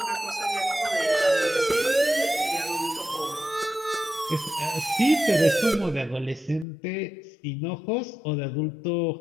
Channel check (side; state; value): right; drops out; at 6.7 s